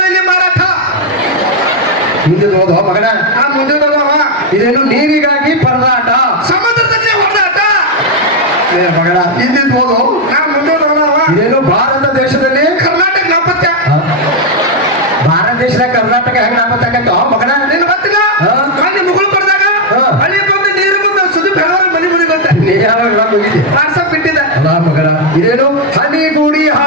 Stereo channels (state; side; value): normal; both; correlation 0.02